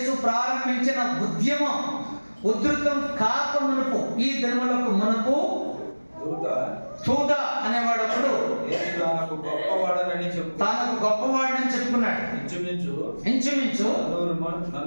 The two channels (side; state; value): both; inverted; correlation -1.00